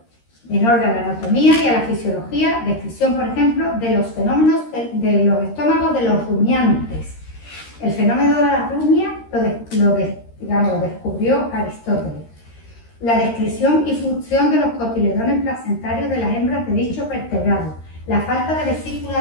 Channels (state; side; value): late; right; 13 ms